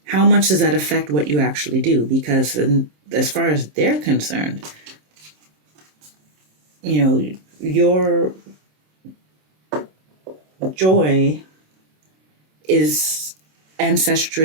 much does that affect what you actually do? Because as far as they're concerned, your joy is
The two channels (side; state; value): left; late; 27 ms